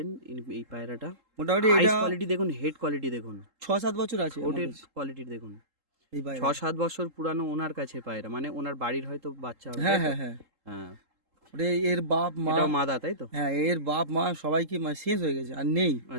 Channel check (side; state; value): left; late; 3.8 ms